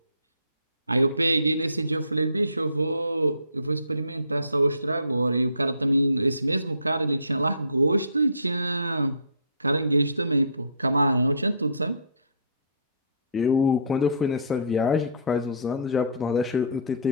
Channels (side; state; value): both; inverted; correlation -0.51